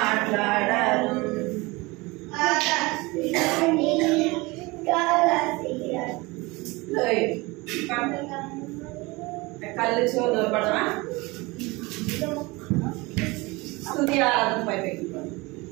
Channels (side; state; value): left; quieter; 23.6 dB